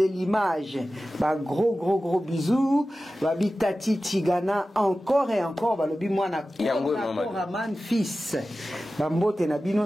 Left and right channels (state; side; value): normal; both; correlation 0.95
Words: l'image ba gros bisous babi Tati Tigana encore et encore balobi mwana Raman fils bambote na bino